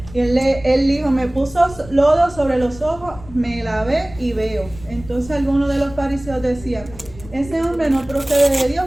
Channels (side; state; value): left; noise; rumble, 17 dB below the sound